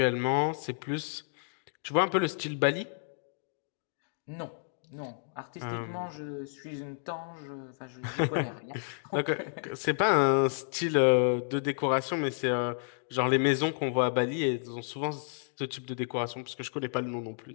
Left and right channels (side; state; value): right; silent; digital silence